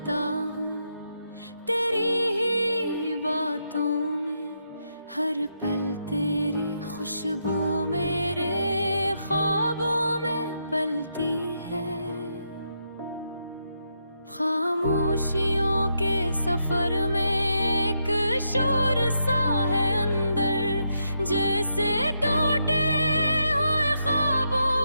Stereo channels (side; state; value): both; inverted; correlation -0.80